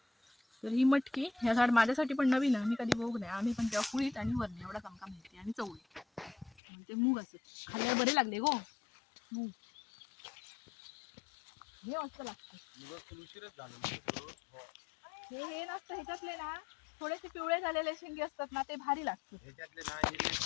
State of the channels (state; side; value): drops out; right; at 6.6 s